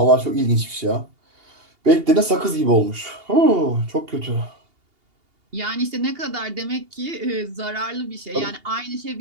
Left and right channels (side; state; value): left; late; 2.8 ms